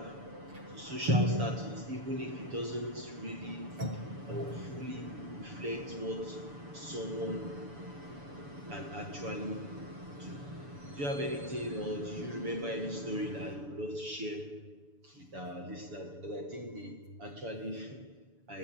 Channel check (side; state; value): left; late; 7.0 ms